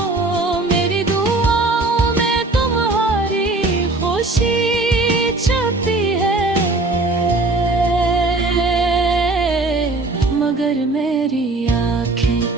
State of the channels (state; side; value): quieter; left; 3.1 dB